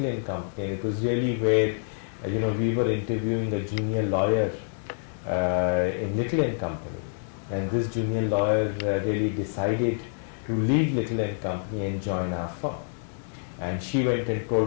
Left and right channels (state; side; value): silent; right; digital silence